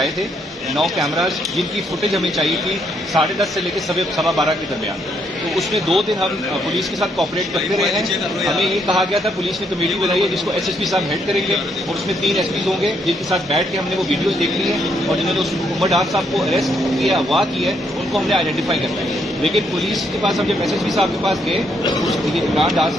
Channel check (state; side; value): normal; both; correlation 0.73